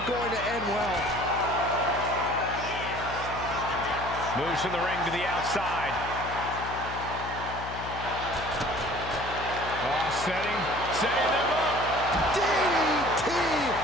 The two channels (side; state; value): left; noise; hum, 10 dB below the sound